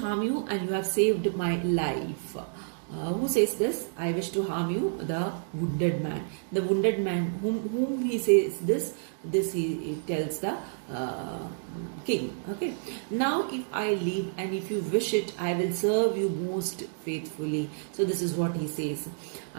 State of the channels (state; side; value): silent; left; digital silence